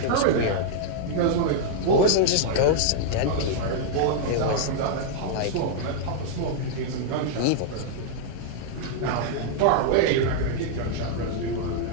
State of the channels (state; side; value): different; both; correlation -0.01